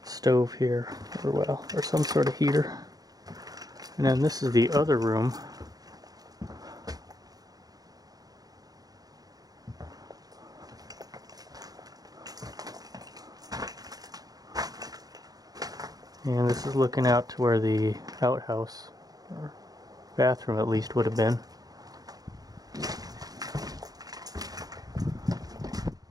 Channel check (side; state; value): left; late; 0.18 ms